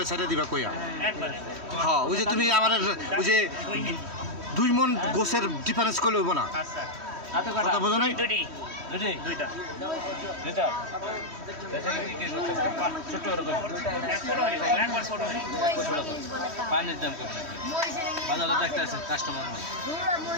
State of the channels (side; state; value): left; late; 3.1 ms